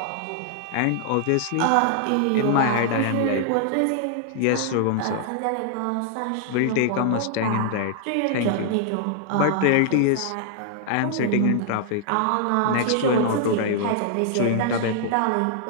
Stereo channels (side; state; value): both; different; correlation -0.01